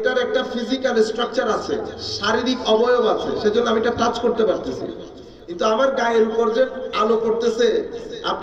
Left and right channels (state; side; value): identical; both; correlation 1.00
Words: একটা ফিজিক্যাল স্ট্রাকচার আছে, শারীরিক অবয়ব আছে, সেজন্য আমি এটা টাচ করতে পারতেছি। কিন্তু আমার গায়ের উপর যে আলো পড়তেছে,